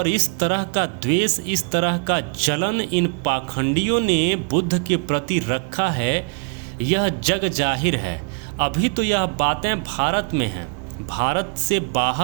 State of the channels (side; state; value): left; quieter; 37.1 dB